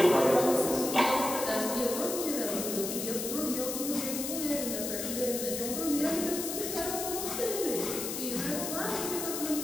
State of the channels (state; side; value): noise; left; hiss, 4 dB below the sound